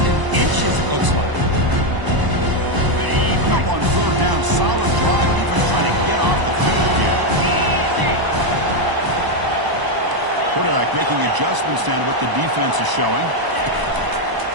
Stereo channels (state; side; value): late; left; 1.0 ms